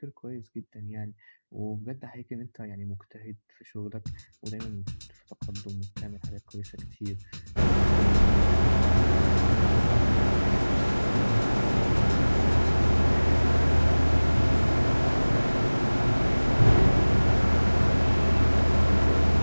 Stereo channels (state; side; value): inverted; both; correlation -1.00